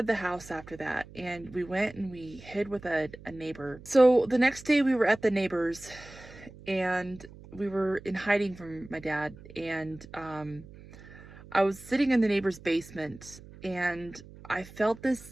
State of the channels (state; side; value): noise; right; hum, 19 dB below the sound